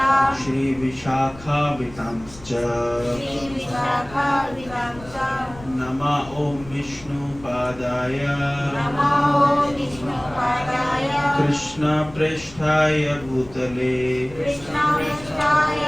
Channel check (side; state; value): left; noise; rumble, 18 dB below the sound